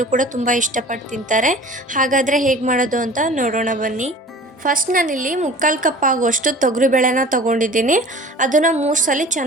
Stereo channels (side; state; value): both; normal; correlation 0.43